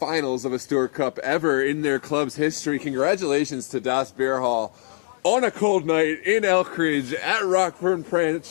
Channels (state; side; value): silent; right; digital silence